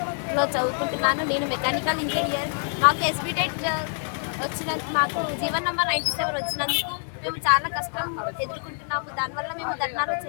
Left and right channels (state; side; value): silent; right; 56 dB below the other